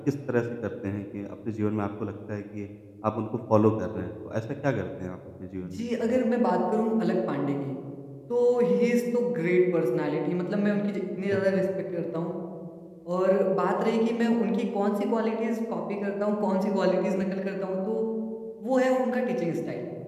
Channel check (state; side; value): identical; both; correlation 1.00